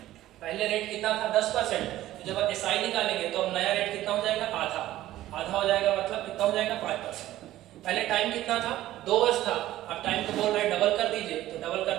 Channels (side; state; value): left; quieter; 14.6 dB